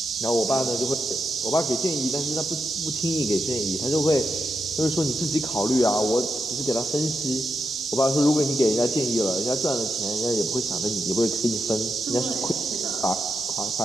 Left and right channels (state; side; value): normal; both; correlation 0.85